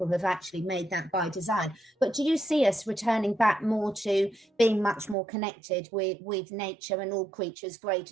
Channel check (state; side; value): drops out; left; at 5.2 s